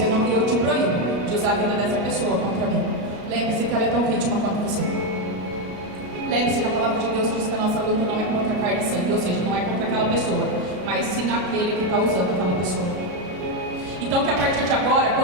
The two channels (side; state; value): left; late; 33 ms